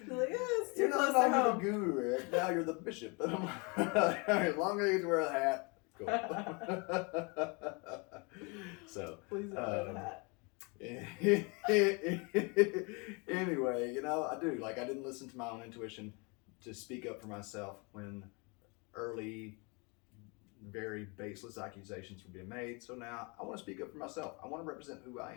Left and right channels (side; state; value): right; quieter; 30.8 dB